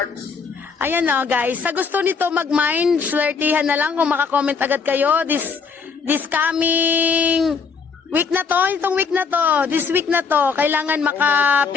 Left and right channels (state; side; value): quieter; right; 5.5 dB